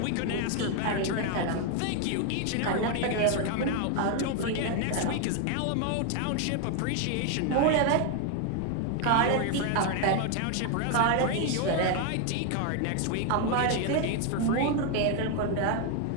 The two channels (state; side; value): different; both; correlation 0.01